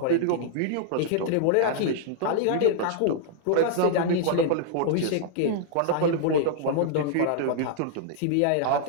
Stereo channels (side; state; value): both; different; correlation -0.01